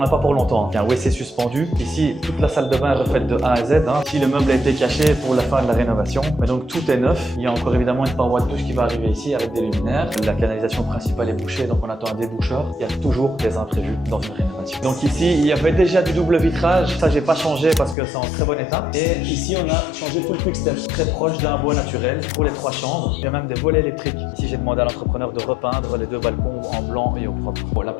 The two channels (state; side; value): drops out; right; at 17.9 s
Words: pas pour longtemps. Il y a un WC suspendu. Ici, toute la salle de bain est refaite de A à Z. Ici, le meuble a été caché pour la fin de la rénovation. Mais donc tout est neuf. Il y a encore évidemment une paroi de douche qui va arriver ici avec des luminaires. La canalisation principale est bouchée, donc on attend un déboucheur. Il y a toujours des imprévus dans une rénovation. Donc ici, il y avait déjà du double vitrage. Ça, j'ai pas changé parce que c'est en très bon état. Et ici, on a changé tout le quick step. Très proche d'un bois naturel pour les 3 chambres. Il y a même des volets électriques. Ici, j'ai demandé à l'entrepreneur de repeindre les 2 balcons en blanc et au propre. Bon,